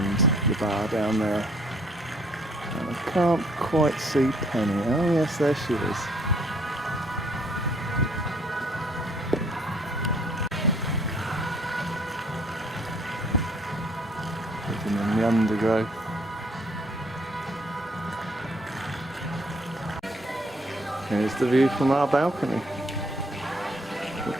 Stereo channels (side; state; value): both; normal; correlation 0.64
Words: the bar down there. And I can't quite see Penny. Oh yes, there she is. Living in the undergrowth. Here's the view from our balcony,